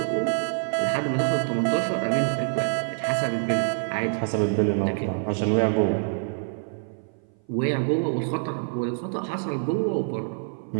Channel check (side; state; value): left; silent; 57 dB below the other